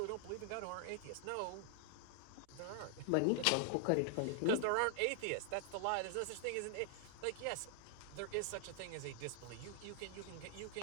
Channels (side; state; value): both; different; correlation 0.00